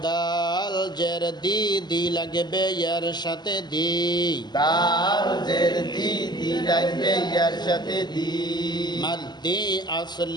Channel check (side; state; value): right; late; 0.21 ms